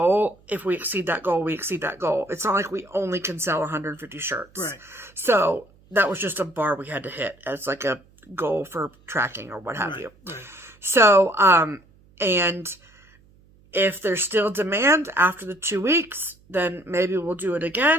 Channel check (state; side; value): noise; right; hum, 29 dB below the sound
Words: If we exceed that goal, we exceed that goal. It's not like we only can sell 150 shirts. Right. So that was just a bar we had to hit as like a goal for tracking or what have you. Right. So, and if there's still demand after the 2 weeks, then maybe we'll do it